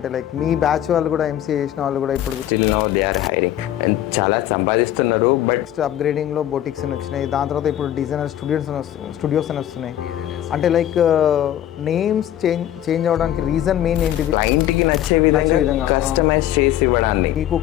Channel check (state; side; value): quieter; right; 12.0 dB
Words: మీ బ్యాచ్ వాళ్ళు కూడా ఎంసీఏ చేసిన వాళ్ళు కూడా ఇప్పుడు still now they are hiring and చాలా సంపాదిస్తున్నారు. బట్ నెక్స్ట్ అప్‌గ్రేడింగ్‌లో బొటిక్స్ అని వచ్చినాయి. దాని తర్వాత ఇప్పుడు డిజైనర్ స్టూడియోస్ అని వస్తున్నాయి. అంటే నేమ్స్ చేంజ్ అవ్వడానికి రీజన్ మెయిన్ ఏంటిది? క్లయింట్కి నచ్చే విధంగా, విధంగా కస్టమైజ్ చేసి ఇవ్వడాన్ని. మీకు